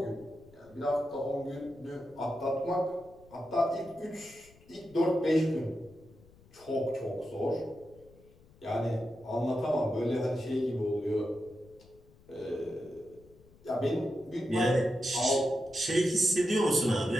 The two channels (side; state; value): left; noise; rumble, 26 dB below the sound